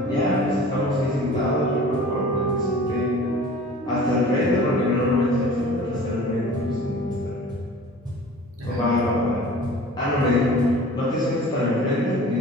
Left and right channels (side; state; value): both; normal; correlation 0.43